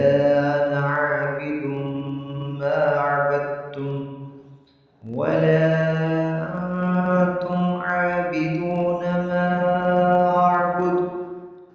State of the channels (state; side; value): identical; both; correlation 1.00